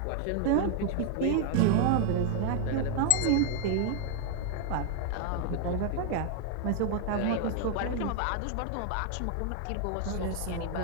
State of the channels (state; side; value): different; both; correlation 0.00